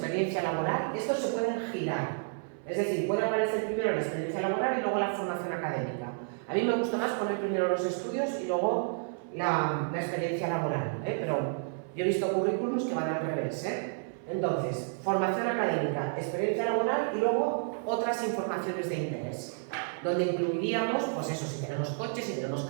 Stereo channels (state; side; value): silent; left; 57 dB below the other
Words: laboral. Estos se pueden girar. Es decir, puede aparecer primero la experiencia laboral y luego la formación académica. A mí me gusta más poner primero los estudios y luego la experiencia laboral, pero yo he visto currículums que van al revés. Entonces, formación académica, experiencia laboral y luego otras informaciones de interés, donde incluiríamos, pues eso, si tenemos coches, si tenemos